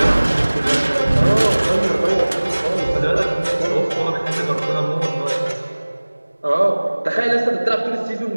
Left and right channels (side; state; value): both; inverted; correlation -1.00